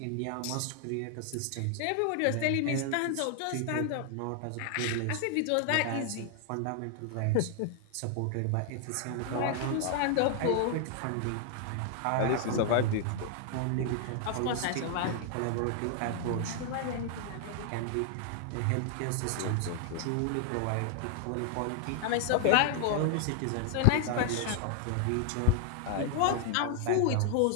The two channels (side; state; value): both; different; correlation 0.00